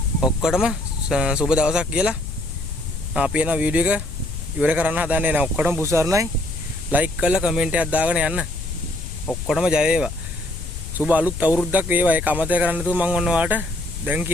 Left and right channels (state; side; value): noise; left; rumble, 8 dB below the sound